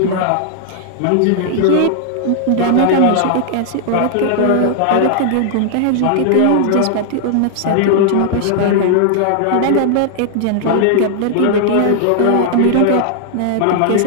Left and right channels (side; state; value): both; different; correlation -0.01